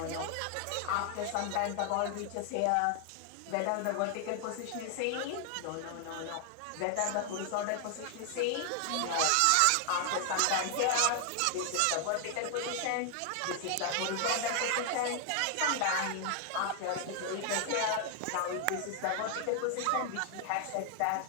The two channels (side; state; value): both; different; correlation 0.00